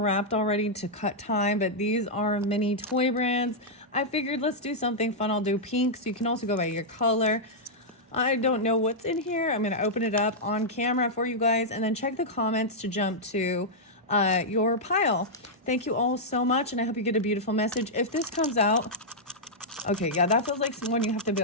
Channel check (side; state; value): both; normal; correlation -0.07